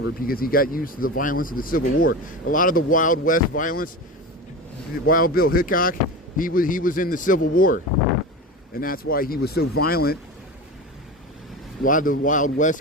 because he got used to the violence of the Civil War. A lot of the Wild West violence, Wild Bill Hickok, he was in the Civil War, and that's why he was so violent. A lot of the Wild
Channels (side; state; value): both; normal; correlation 0.26